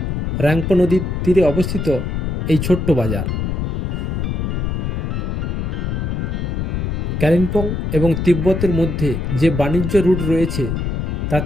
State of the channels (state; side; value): noise; left; rumble, 1 dB below the sound